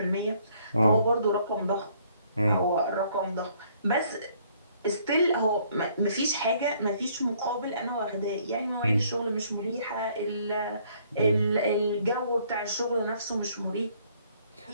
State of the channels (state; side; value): inverted; both; correlation -0.63